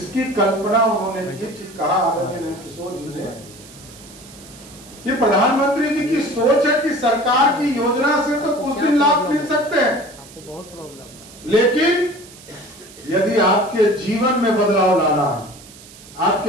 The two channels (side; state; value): right; noise; hiss, 20 dB below the sound